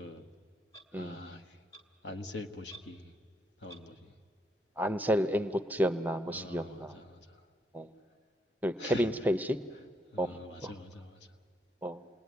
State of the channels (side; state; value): both; normal; correlation 0.76